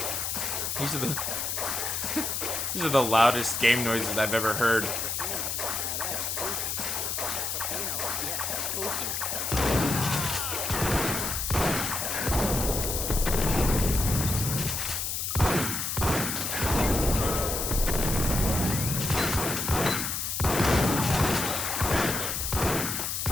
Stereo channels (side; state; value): left; noise; hiss, 2 dB below the sound